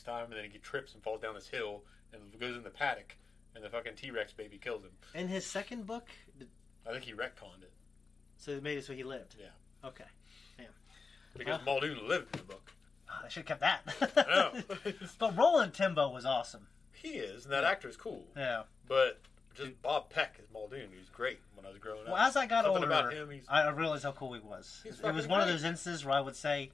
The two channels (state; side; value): quieter; right; 4.5 dB